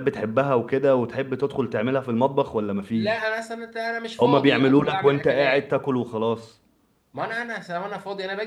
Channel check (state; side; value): identical; both; correlation 1.00